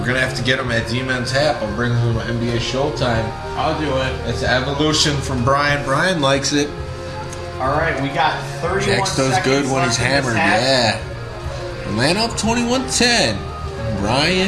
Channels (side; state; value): both; identical; correlation 1.00